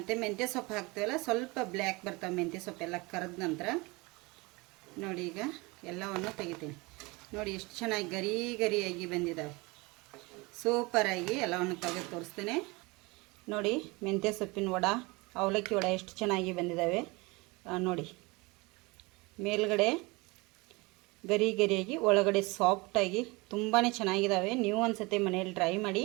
ಮೆಂತ್ಯ ಸೊಪ್ಪು ಹಾಕ್ತೀವಲ್ಲ, ಸ್ವಲ್ಪ ಬ್ಲ್ಯಾಕ್ ಬರ್ತಾವೆ ಮೆಂತ್ಯ ಸೊಪ್ಪೆಲ್ಲ ಕರೆದ ನಂತರ. ನೋಡಿ, ಈಗ ಎಲ್ಲವನ್ನು ತೆಗಿತೀನಿ. ನೋಡಿ ಎಷ್ಟು ಚೆನ್ನಾಗಿ ಗರಿ ಗರಿಯಾಗಿ ಬಂದಿದ್ದಾವೆ. ಸೂಪರಾಗಿ ಎಲ್ಲವನ್ನು ತೆಗೆದು ತೋರಿಸ್ತೇನೆ ನೋಡಿ. ಮೆಂತ್ಯ ಸೊಪ್ಪಿನ ವಡ, ಅವಲಕ್ಕಿ ವಡ ಎಷ್ಟು ಚೆನ್ನಾಗಿ ಬಂದಿದ್ದಾವೆ ನೋಡಿ. ಮೇಲ್ಗಡೆ ಗರಿ ಗರಿಯಾಗಿ, ಒಳಗಡೆ ಸಾಫ್ಟಾಗಿ ತುಂಬಾ ಚೆನ್ನಾಗಿದ್ದಾವೆ. ನೀವು ಒಂದು ಸತಿ ಮನೆಯಲ್ಲಿ ಟ್ರೈ ಮಾಡಿ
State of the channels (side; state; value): left; quieter; 25.0 dB